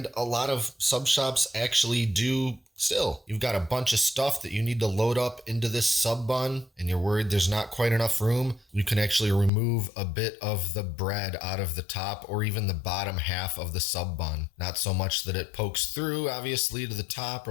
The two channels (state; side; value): drops out; right; at 9.5 s